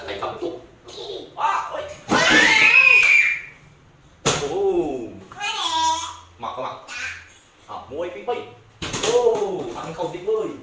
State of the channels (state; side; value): identical; both; correlation 1.00